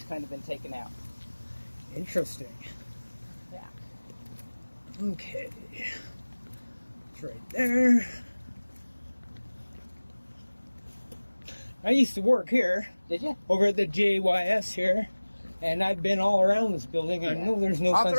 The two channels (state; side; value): inverted; both; correlation -1.00